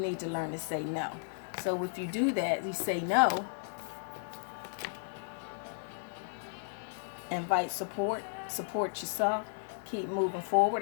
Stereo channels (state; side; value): silent; right; digital silence